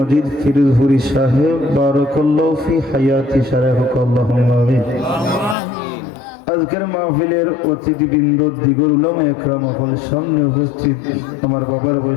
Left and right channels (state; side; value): drops out; right; at 5.6 s